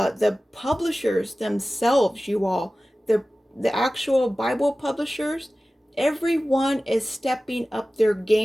publishers themselves, you all, the actual Bible publishers, everyone is stepping up their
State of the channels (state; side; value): normal; both; correlation 0.96